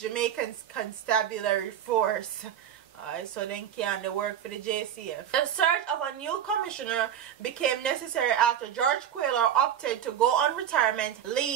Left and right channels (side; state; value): left; quieter; 9.8 dB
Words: Constabulary force. So then can they work for the JCF. The search of a new commissioner became necessary after George Quayle opted to go on retirement